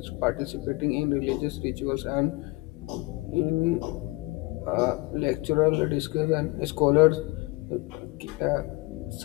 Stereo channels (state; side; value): quieter; right; 23.8 dB